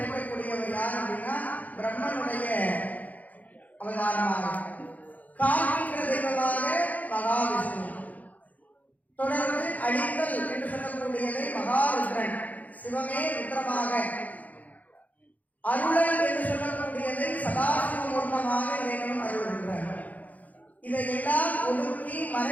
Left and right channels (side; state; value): right; late; 0.077 ms